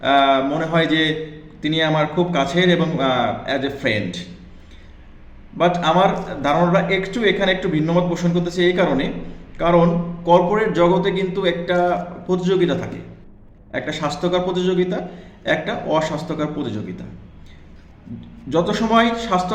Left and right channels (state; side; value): identical; both; correlation 1.00